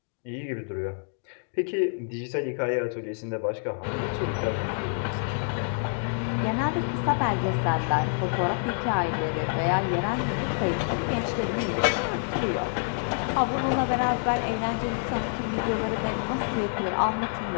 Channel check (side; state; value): right; silent; digital silence